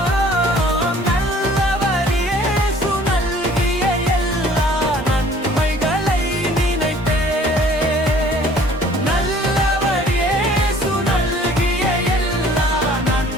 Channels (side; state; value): both; normal; correlation 0.53